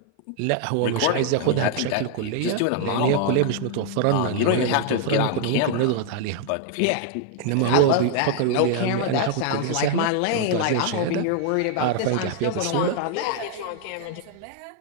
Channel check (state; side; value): different; both; correlation 0.00